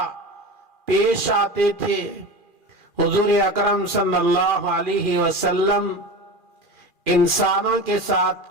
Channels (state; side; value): late; left; 2.4 ms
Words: پیش آتے تھے، حضور اکرم صلی اللہ علیہ وسلم انسانوں کے ساتھ